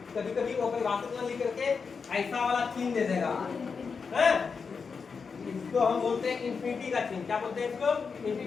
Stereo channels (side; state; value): right; quieter; 5.4 dB